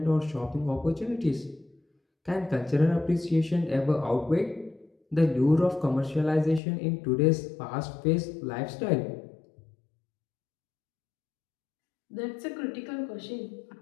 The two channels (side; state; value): right; drops out; at 6.6 s